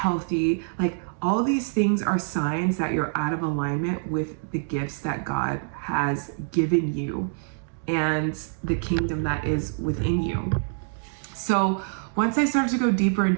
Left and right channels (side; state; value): left; silent; digital silence